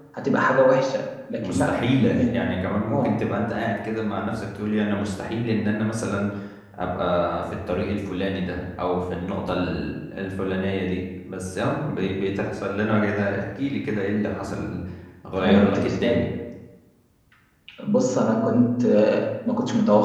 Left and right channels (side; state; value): both; identical; correlation 1.00